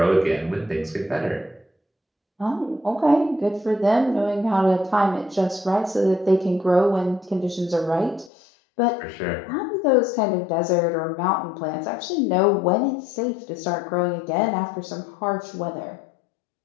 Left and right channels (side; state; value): right; drops out; at 8.3 s